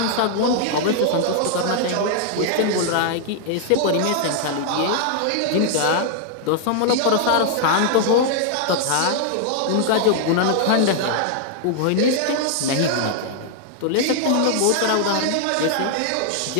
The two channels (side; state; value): both; different; correlation 0.00